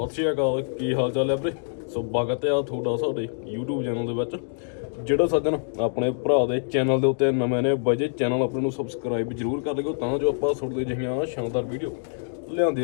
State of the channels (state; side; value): silent; right; digital silence